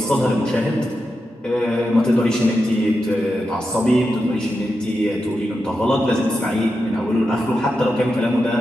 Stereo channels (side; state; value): both; normal; correlation 0.88